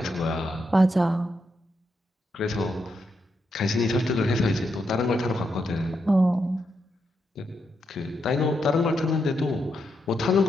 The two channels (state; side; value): normal; both; correlation 0.82